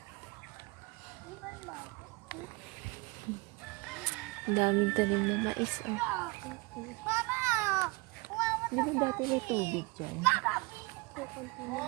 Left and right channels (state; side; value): quieter; left; 26.0 dB